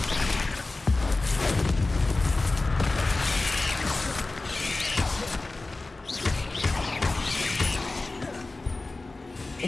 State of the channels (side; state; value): right; quieter; 3.2 dB